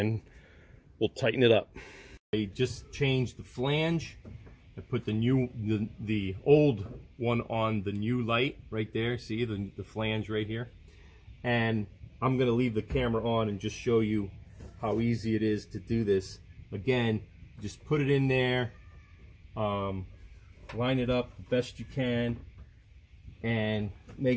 we'll tighten it up. I just changed the flange. I put the old one on the new light right there. See the flange right here. And I'm going to leave the camera on and just show you how easy it is to do this. Again, just put it in there, line it up the best you can, and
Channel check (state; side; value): identical; both; correlation 1.00